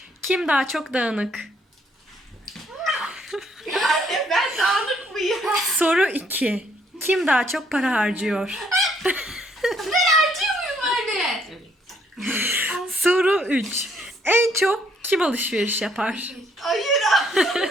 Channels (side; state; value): both; normal; correlation 0.68